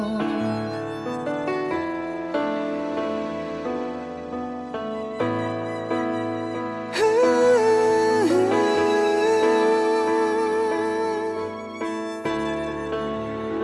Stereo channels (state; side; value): identical; both; correlation 1.00